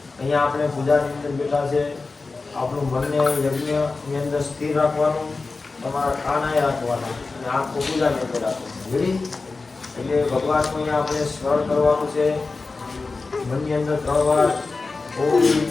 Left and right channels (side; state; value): right; quieter; 3.9 dB